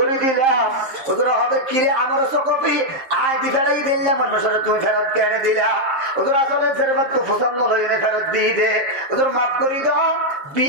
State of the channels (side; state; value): left; late; 7.6 ms